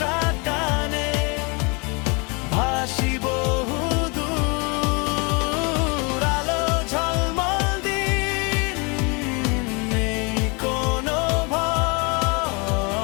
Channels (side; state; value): right; quieter; 30.6 dB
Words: টানে ভাসি বহু দূর। আলো ঝলমল দিন, নেই কোনো